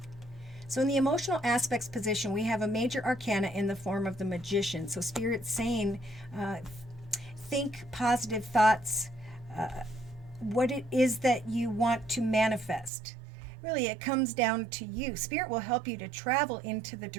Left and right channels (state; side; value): drops out; left; at 12.9 s